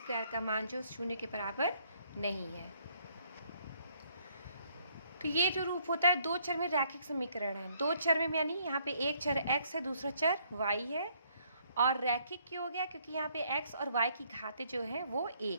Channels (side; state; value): both; inverted; correlation -0.67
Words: का मान जो शून्य के बराबर नहीं है। तो ये जो रूप होता है दो चर में रैखिक समीकरण है। दो चर में यानी यहाँ पे एक चर x है, दूसरा चर y है। और रैखिक क्यों हो गया? क्योंकि यहाँ पे x और y की घातें जो है वो